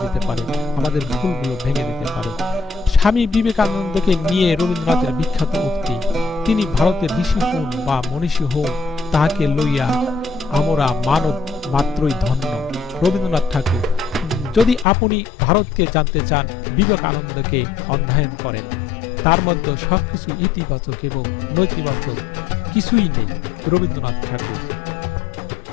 দিতে পারে, আমাদের ভুলগুলো ভেঙে দিতে পারে। স্বামী বিবেকানন্দকে নিয়ে রবীন্দ্রনাথের বিখ্যাত উক্তি, তিনি ভারতের ঋষি হন বা মনীষী হন, তাহাকে লইয়া আমরা মানব মাত্রই ধন্য। রবীন্দ্রনাথ ঠাকুর। যদি আপনি ভারতকে জানতে চান, বিবেকানন্দকে অধ্যয়ন করেন। তার মধ্যে সবকিছু ইতিবাচক এবং নৈতিবাচক কিছুই নেই। রবীন্দ্রনাথ ঠাকুর।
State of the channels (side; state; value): right; drops out; at 14.9 s